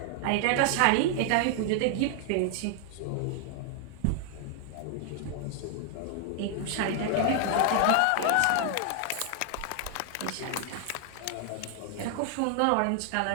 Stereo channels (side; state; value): both; different; correlation 0.00